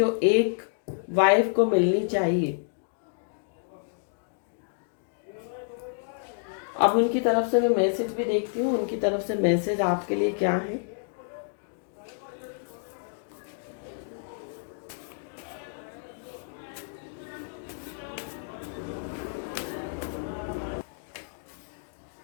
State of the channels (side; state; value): right; silent; digital silence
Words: एक वाइफ को मिलनी चाहिए। अब उनकी तरफ से मैं मैसेज भी देखती हूँ, उनकी तरफ से मैसेज आपके लिए क्या है।